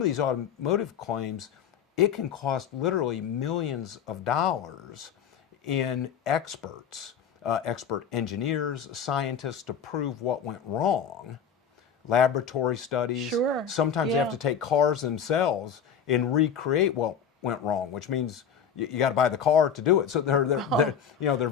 these automotive claims, it can cost literally millions of dollars in experts, expert engineers, scientists to prove what went wrong, laboratory studies. Sure. Sometimes they have to take cars themselves and recreate what went wrong, which means you got to buy the car to do it. So they're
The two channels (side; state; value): right; quieter; 7.6 dB